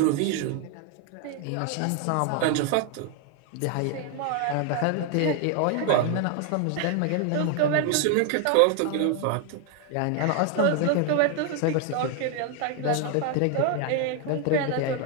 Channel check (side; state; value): both; different; correlation 0.01